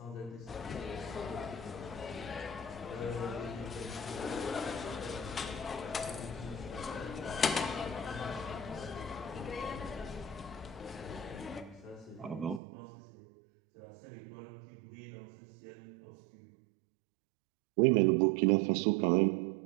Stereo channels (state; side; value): drops out; left; at 12.6 s